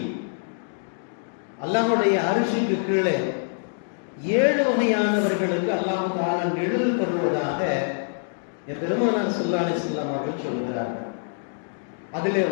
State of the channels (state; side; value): silent; right; digital silence